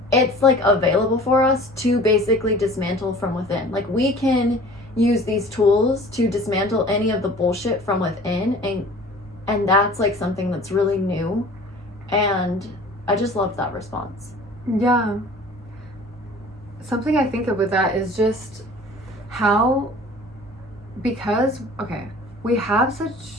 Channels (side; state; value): both; normal; correlation 0.45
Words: it's like available for us to basically dismantle from within. Like we can use these tools to dismantle any of the bullshit from within. And that's like something that's really new. And I just loved that response. Yeah. Something I think of with that is just how, because, we have such